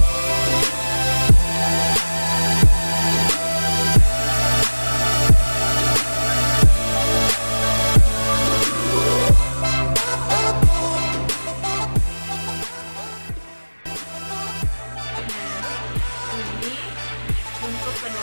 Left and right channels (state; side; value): inverted; both; correlation -1.00